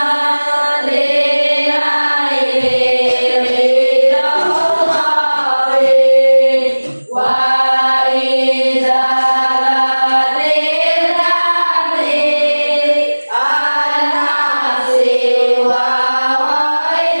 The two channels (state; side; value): inverted; both; correlation -1.00